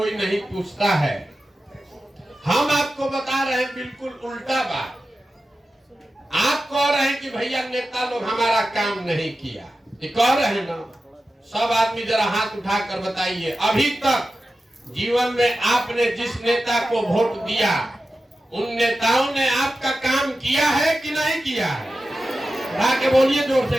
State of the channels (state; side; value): normal; both; correlation 0.93